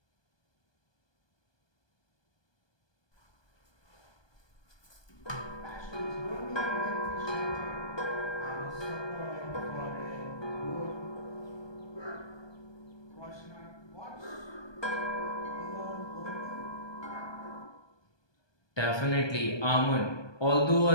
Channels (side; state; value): right; late; 1.2 ms